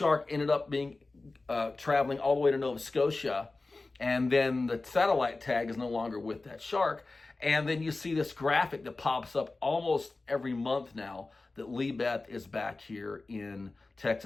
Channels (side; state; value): right; quieter; 3.4 dB